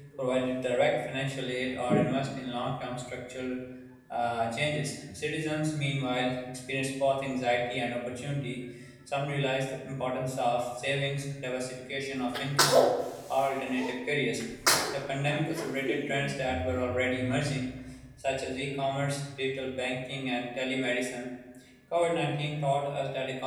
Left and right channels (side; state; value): both; identical; correlation 1.00